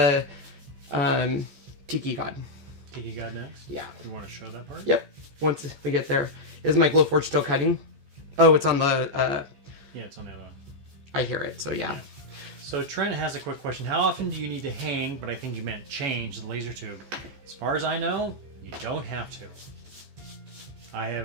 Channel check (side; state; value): left; late; 14 ms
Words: Tiki God. Tiki God next? Yeah. You want to show that part? Yep. Once we get there. Is my Glowforge still cutting? Oh, it's on the... Yeah, it's on the other one. I hear it, so yeah. So Trent has a quick question. How often do you need to hang, but I think you meant change, the laser tube? As far as I know, you don't have to. I